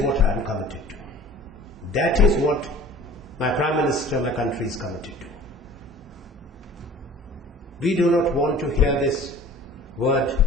I am committed to. That is what my Prime Minister, my country is committed to. We do not want to hear this word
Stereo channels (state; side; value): normal; both; correlation 0.46